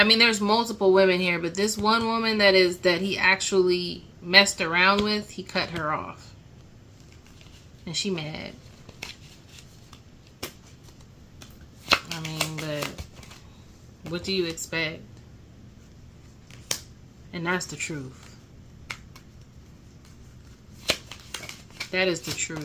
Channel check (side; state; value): both; identical; correlation 1.00